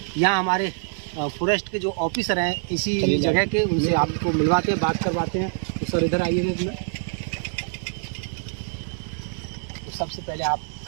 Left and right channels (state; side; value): silent; left; 58 dB below the other